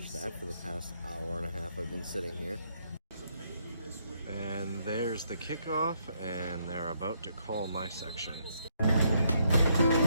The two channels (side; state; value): both; inverted; correlation -0.74